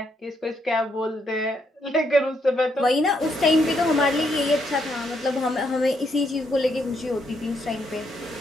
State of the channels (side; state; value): both; normal; correlation 0.76